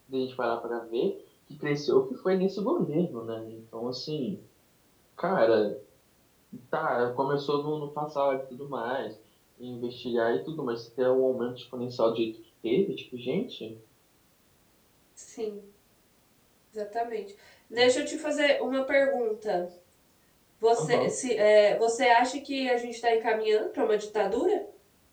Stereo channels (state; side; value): identical; both; correlation 1.00